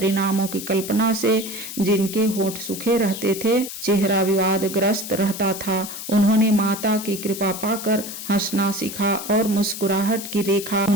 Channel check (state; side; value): noise; left; hiss, 9 dB below the sound